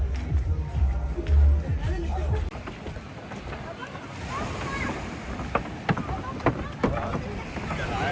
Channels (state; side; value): identical; both; correlation 1.00